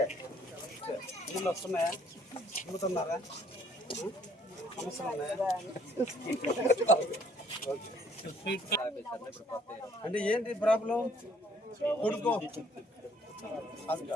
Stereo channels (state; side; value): normal; both; correlation 0.61